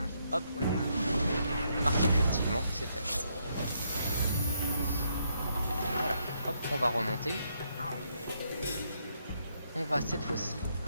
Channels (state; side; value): inverted; both; correlation -0.75